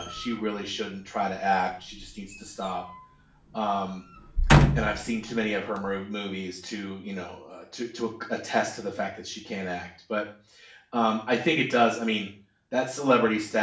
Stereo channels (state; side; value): identical; both; correlation 1.00